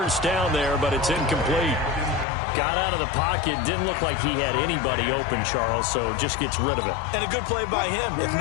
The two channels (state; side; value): drops out; right; at 2.2 s